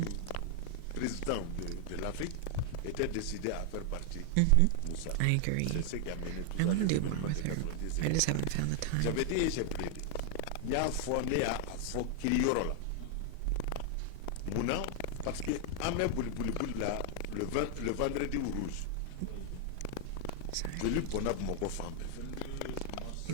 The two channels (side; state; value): both; different; correlation 0.00